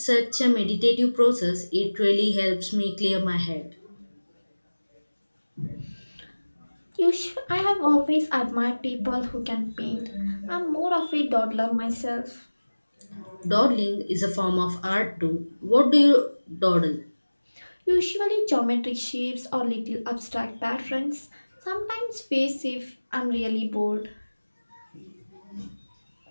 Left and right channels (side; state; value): both; inverted; correlation -1.00